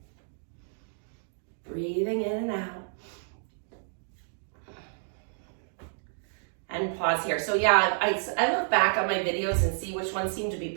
pause here. So yeah, I look back on my videos and see which ones seem to be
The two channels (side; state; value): left; silent; digital silence